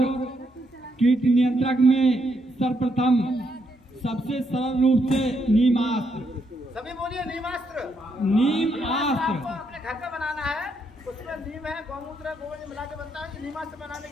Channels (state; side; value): normal; both; correlation 0.77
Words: कीट नियंत्रक में सर्वप्रथम सबसे सरल रूप से नीमास्त्र, सभी बोलिए नीमास्त्र। नीमास्त्र आपको अपने घर पे बनाना है, उसमें नीम है, गौमूत्र है, गोबर मिला के बनता है। नीमास्त्र बनाने